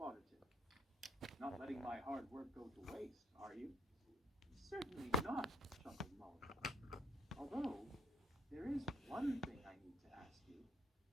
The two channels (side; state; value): both; normal; correlation 0.69